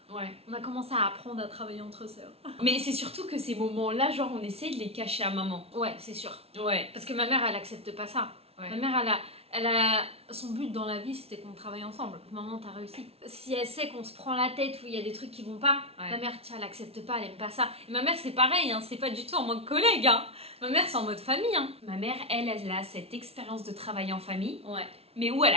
On a commencé à apprendre à travailler entre sœurs. Mais c'est surtout que ces moments-là, genre on essaie de les cacher à maman. Ouais, c'est sûr. Ouais. Parce que ma mère, elle accepte pas ça. Ma mère, elle a... Son but dans la vie, c'était qu'on travaille ensemble. Maman, t'as réussi. Si elle sait qu'on se prend la tête ou il y a des trucs qui vont pas, ma mère, tiens, elle accepte pas, elle aime pas ça. Et ma mère, c'est pareil, hein, c'est pas du tout en mode collègue. Hein. Ma mère, c'est en mode famille. Hein. Ma mère, elle a cette expérience de travail en famille, mais où elle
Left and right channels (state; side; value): late; left; 0.29 ms